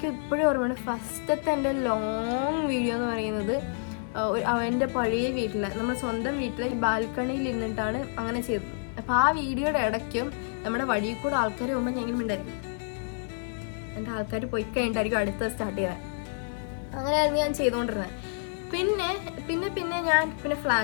ഇപ്പോഴും ഓർമ്മയാണ് ഫസ്റ്റത്തെ എൻ്റെ ലോങ് വീഡിയോ എന്ന് പറയുന്നത് എൻ്റെ പഴയ വീട്ടിൽ, നമ്മുടെ സ്വന്തം വീട്ടിൽ ബാൽക്കണിയിൽ ഇരുന്നിട്ടാണ് അങ്ങനെ ചെയ്തത്. അപ്പോൾ ആ വീഡിയോയുടെ ഇടയ്ക്കും നമ്മുടെ വഴിയിൽ കൂടെ ആൾക്കാർ പോകുമ്പോൾ ഞാൻ ഇങ്ങനെ ഉണ്ടായിരിക്കും, എൻ്റെ ആൾക്കാർ പോയി കഴിഞ്ഞിട്ടായിരിക്കും അടുത്ത സ്റ്റാർട്ട് ചെയ്തത്. അങ്ങനെയായിരുന്നു ഞാൻ ചെയ്തുകൊണ്ടിരുന്നത്. പിന്നെ ഞാൻ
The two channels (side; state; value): right; silent; digital silence